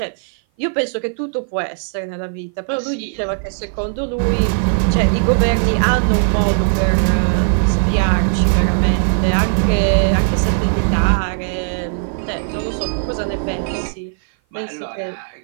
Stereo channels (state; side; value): silent; left; 56 dB below the other